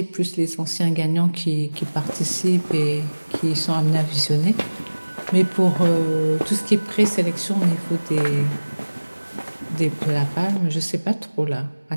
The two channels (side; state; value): both; inverted; correlation -1.00